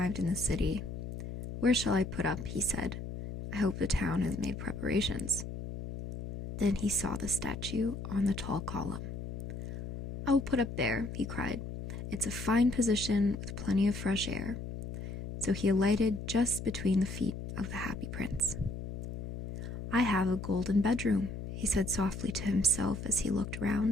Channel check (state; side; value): noise; left; hum, 7 dB below the sound